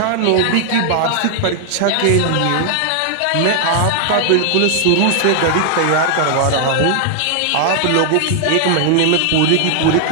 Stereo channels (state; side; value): different; both; correlation 0.00